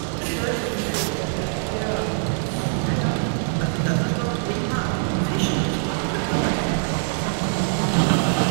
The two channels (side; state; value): left; silent; digital silence